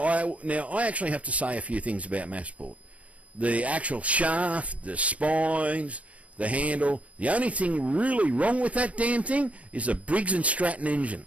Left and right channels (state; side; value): late; left; 0.066 ms